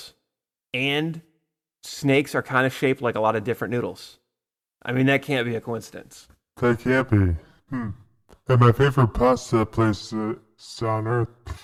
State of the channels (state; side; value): identical; both; correlation 1.00